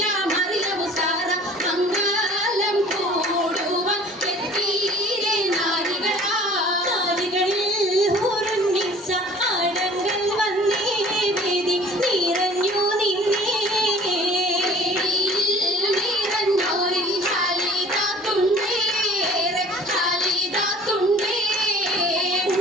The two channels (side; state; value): both; normal; correlation 0.48